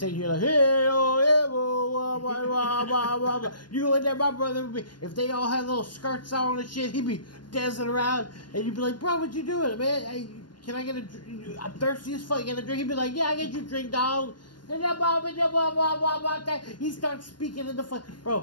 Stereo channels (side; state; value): right; late; 0.71 ms